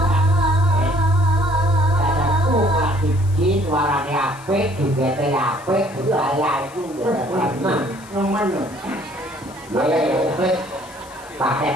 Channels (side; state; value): left; noise; hiss, 22 dB below the sound